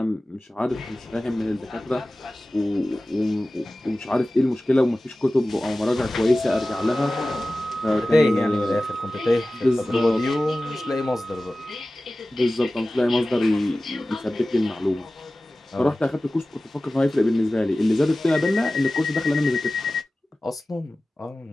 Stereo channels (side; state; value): both; normal; correlation 0.96